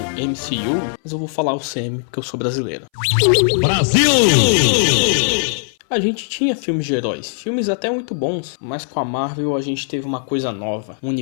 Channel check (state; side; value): silent; right; 63 dB below the other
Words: mas eu vou falar UCM porque eu sou brasileiro. Brasil! A gente tinha filmes de heróis, filmes até muito bons, mas com a Marvel a gente teve uma coisa nova, um